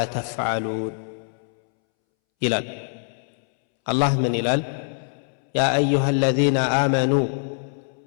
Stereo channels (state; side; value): silent; right; 63 dB below the other